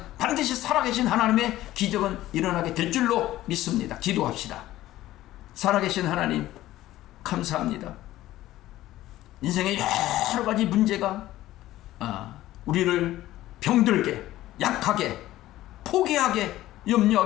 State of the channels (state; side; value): quieter; right; 15.2 dB